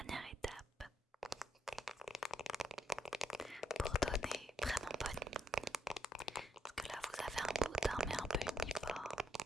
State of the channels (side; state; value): both; normal; correlation 0.75